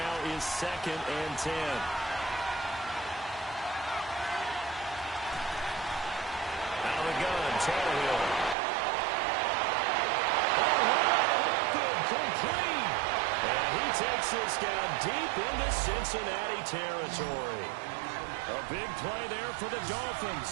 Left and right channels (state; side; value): drops out; left; at 8.6 s